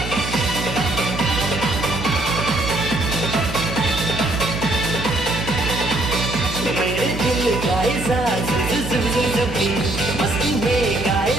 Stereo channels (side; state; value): right; noise; hum, 7 dB below the sound